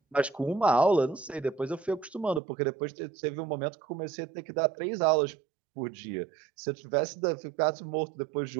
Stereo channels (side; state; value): left; drops out; at 2.4 s